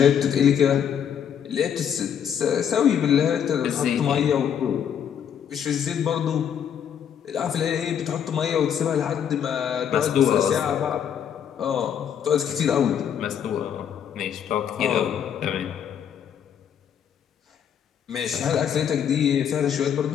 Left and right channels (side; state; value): right; quieter; 8.6 dB